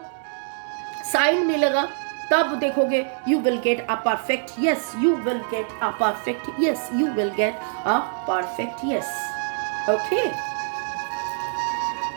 साइन मिलेगा तब देखोगे you will get a perfect yes. Okay.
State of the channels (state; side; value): silent; left; digital silence